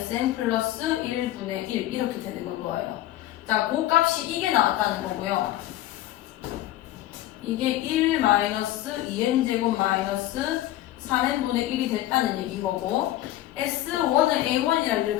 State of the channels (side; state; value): right; quieter; 14.4 dB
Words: 플러스 1분의 1 이렇게 되는 건 거예요. 자, 그 값이 이게 나왔다는 거고요. 이게 1 마이너스 2n제곱 마이너스 3n분의 1이 됐다는 얘기인 거고 S1은 A1이라는 걸